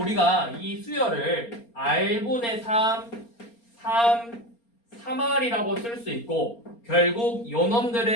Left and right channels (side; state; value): right; late; 4.3 ms